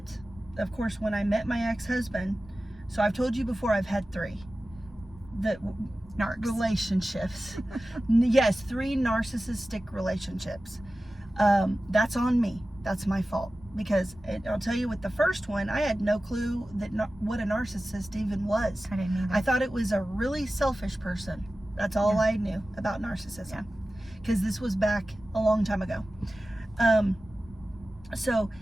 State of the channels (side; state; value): both; normal; correlation 0.95